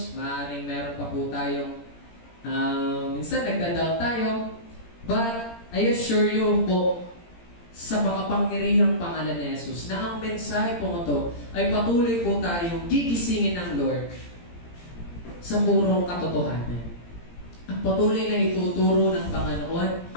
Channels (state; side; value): late; right; 17 ms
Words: maaring meron pa po tayong minsan nagdadoubt tayo, but I assure you po sa makapangyarihang pangalan ni Jesus na ang mensahe po ito ay patuloy po tayong gigisingin ng Lord sa purong katotohanan. At patuloy na ituturo ng Panginoon